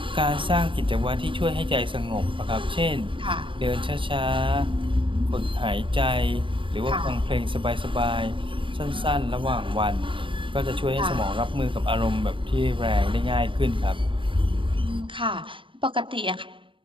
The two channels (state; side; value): late; left; 0.25 ms